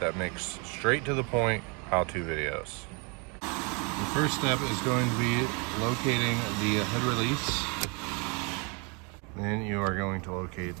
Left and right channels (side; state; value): left; quieter; 32.6 dB